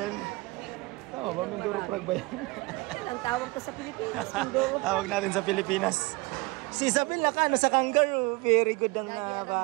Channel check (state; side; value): quieter; left; 24.3 dB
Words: Tama ba? Mindoro frog ba yan? Ang tawag ko sa Pilipinas. Mindoro. Tawag natin sa Pilipinas. Si Isabel naka sa kangaroo. Very good ang